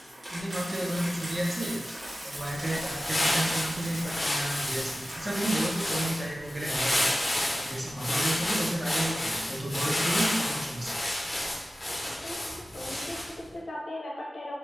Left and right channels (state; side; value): normal; both; correlation 0.95